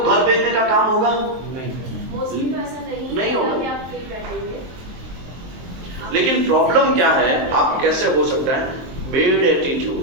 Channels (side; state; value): left; late; 23 ms